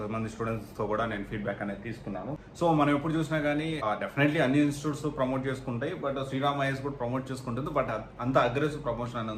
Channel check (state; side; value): identical; both; correlation 1.00